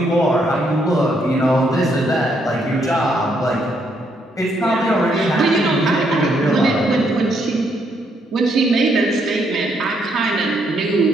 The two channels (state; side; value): normal; both; correlation 0.73